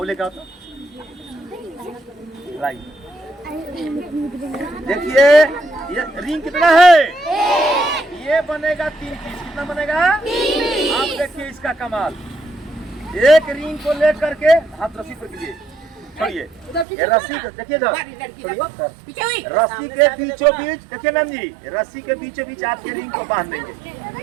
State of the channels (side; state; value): left; drops out; at 16.9 s